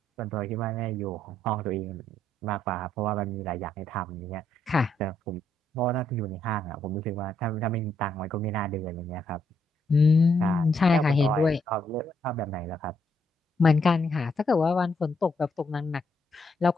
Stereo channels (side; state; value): both; normal; correlation 0.75